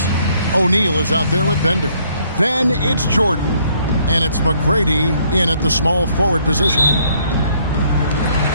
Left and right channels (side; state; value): both; inverted; correlation -0.66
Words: O'Neal is out there with Bender. Then it's Jordan. And it's McGrady in at the small forward position.